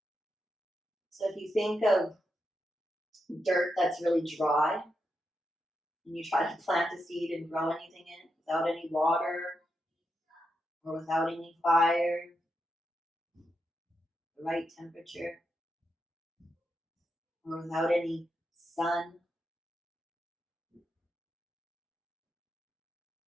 So if you think of dirt that's really dry, and you try to plant a seed and grow anything in it without any water or without any fire, the right temperature, or without any sun,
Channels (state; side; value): normal; both; correlation 0.85